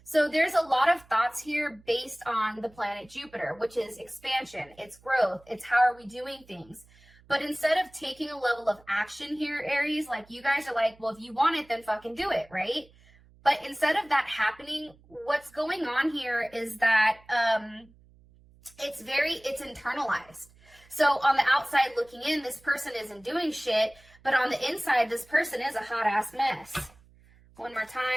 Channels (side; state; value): right; noise; hum, 27 dB below the sound